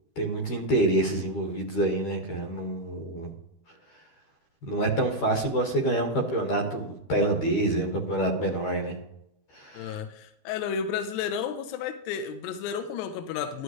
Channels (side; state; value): right; late; 13 ms